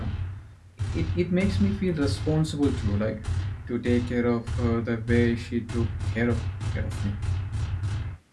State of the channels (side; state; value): both; identical; correlation 1.00